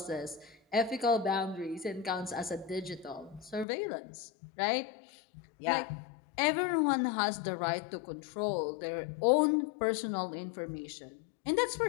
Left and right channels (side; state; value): right; drops out; at 3.7 s